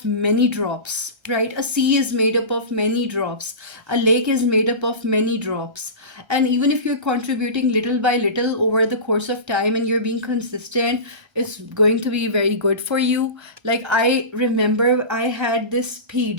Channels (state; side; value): late; left; 1.3 ms